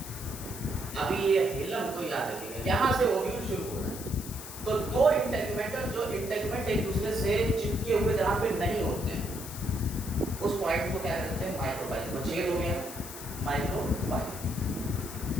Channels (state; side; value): noise; left; hiss, 11 dB below the sound